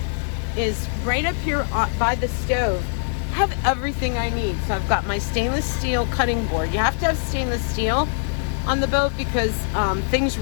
is right up here by the stove. I have everything I need. So I've got my stainless steel cutting board. You have to have stainless steel on the boat because things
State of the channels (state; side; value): silent; right; digital silence